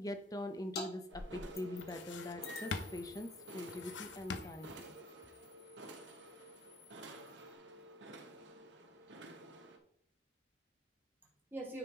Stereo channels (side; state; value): both; normal; correlation 0.58